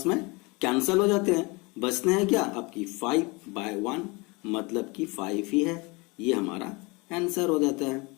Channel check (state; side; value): quieter; right; 27.0 dB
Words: में कैंसल हो जाते हैं, बचते हैं क्या आपकी 5/1, मतलब कि 5 ही है, ये हमारा आंसर हो जाता है।